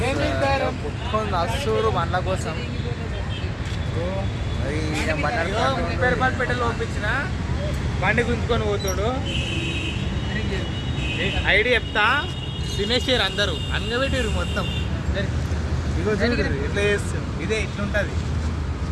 కుట్టుకొని వస్తారు బండ్ల కోసం. పేరుపాటు పంపించిన బండి గుంజుకొని పోతాడు. ఐడియా చెప్తా, తినేసారు అందరూ, అంగబెట్టారు మొత్తం. ఇగో చూడు ఇట్లా చేస్తుంది, ఇదే ఇట్లుంటుంది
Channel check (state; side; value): identical; both; correlation 1.00